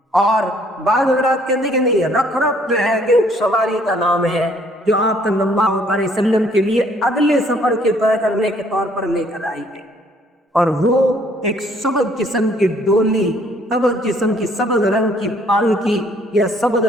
اور بعض حضرات کہتے ہیں کہ نہیں، رفرف جو ہے کہ ایک سواری کا نام ہے جو آپ صلی اللہ علیہ وسلم کے لیے اگلے سفر کے طے کرنے کے طور پر لے کر آئی گئی، اور وہ ایک سبز قسم کی ڈولی، سبز قسم کی سبز رنگ کی پالکی یا سبز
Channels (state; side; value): normal; both; correlation 0.62